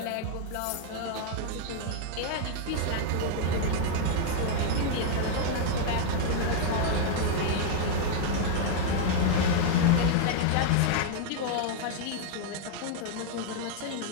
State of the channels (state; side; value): different; both; correlation 0.00